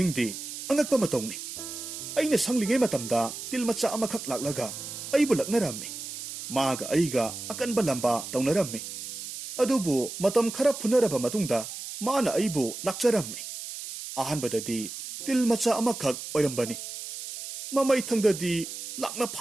angakpa matawni aina sanglingai matamda tilmacha amakhak laklaga aibu laknarammi maga aiga akanba lamba tawnarammi adubu matam khara phunaraba matungda mana aibu lakcharammi ahanbadadi tilmacha amakhak oirambani mamai thangdadi lakna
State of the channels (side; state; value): right; noise; hiss, 9 dB below the sound